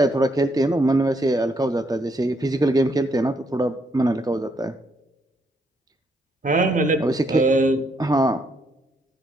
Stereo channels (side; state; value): both; normal; correlation 0.73